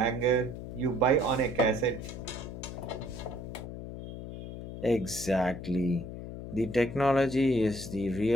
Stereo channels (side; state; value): left; noise; hum, 9 dB below the sound